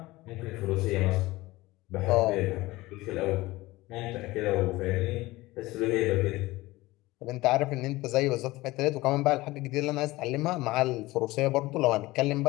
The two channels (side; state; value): right; quieter; 19.5 dB